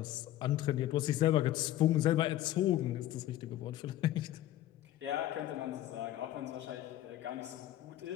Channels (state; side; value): quieter; right; 13.6 dB